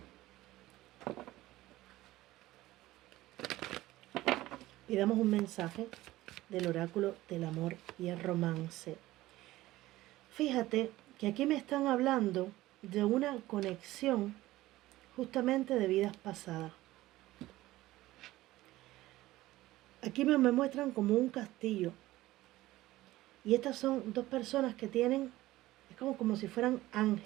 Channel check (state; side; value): quieter; left; 16.9 dB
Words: Y damos un mensaje del oráculo del amor y el romance. Fíjate que aquí me están hablando de una conexión justamente de vidas pasadas. Aquí me muestran como un castillo. Y estas son dos personas que tienen, es como si fueran